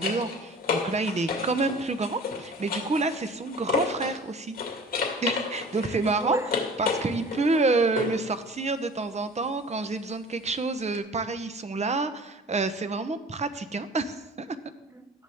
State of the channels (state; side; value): normal; both; correlation 0.44